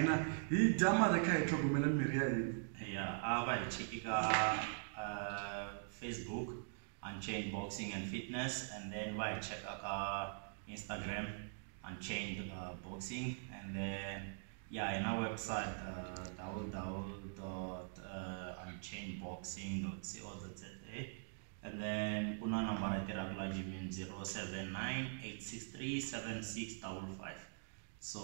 hi dya mara kha hi tlhogomela mirhi ya hina. Yeah, I va hi check Facebook Unchained Boxing and Fitness, and then va hi check Instagram Unchained Boxing, and then yeah, in our website www.unchainedboxing.co.za, and then kuna number at regular gym 079-863-7655.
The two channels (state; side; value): silent; left; digital silence